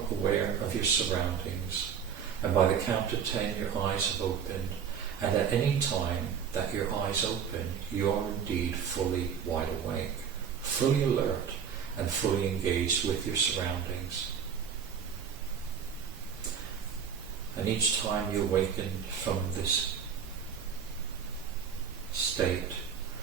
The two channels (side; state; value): left; quieter; 7.5 dB